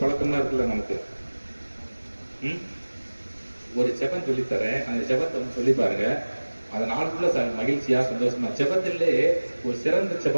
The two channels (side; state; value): both; inverted; correlation -1.00